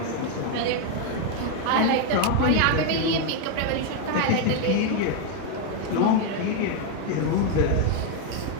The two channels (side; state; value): both; different; correlation 0.01